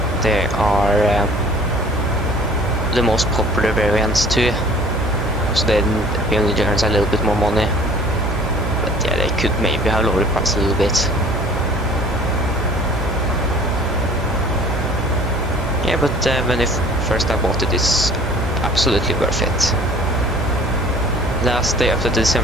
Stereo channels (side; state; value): right; noise; hum, 6 dB below the sound